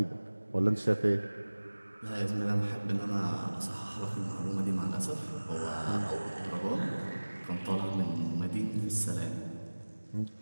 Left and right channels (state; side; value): inverted; both; correlation -1.00